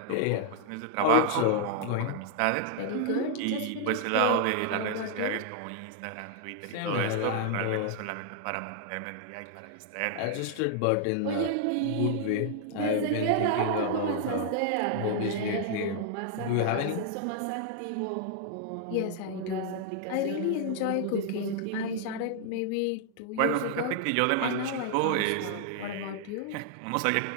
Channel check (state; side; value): different; both; correlation -0.01